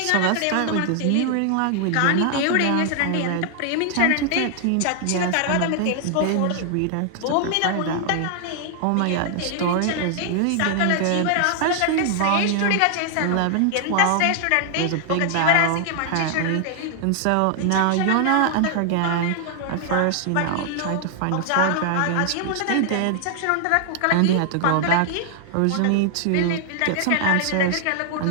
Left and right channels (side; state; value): both; different; correlation 0.00